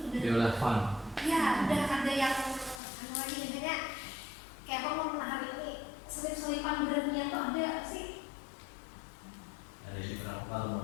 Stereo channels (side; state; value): right; drops out; at 2.8 s